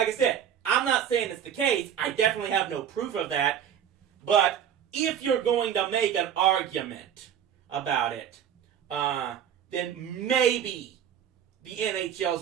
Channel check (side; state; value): left; quieter; 9.1 dB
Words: I said, I'm not saying it's the case. I definitely have no proof of that. But if you're going to make an argument about it, then maybe the NHL